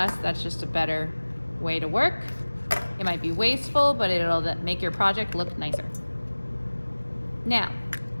That's just a better way to work. It might be wasteful, but it'll make your project look nicer. Now,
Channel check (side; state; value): both; inverted; correlation -1.00